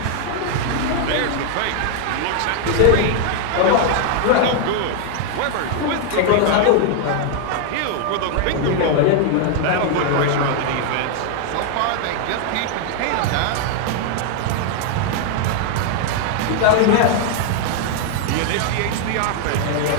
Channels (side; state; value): both; different; correlation 0.00